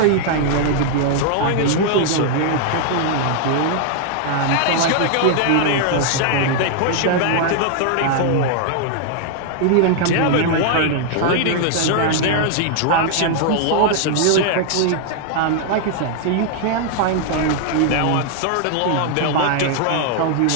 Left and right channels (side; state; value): both; different; correlation 0.00